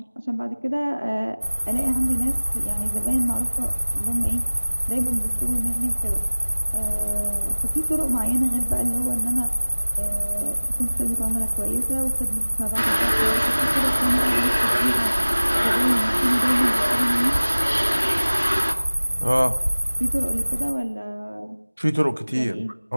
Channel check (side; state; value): both; inverted; correlation -1.00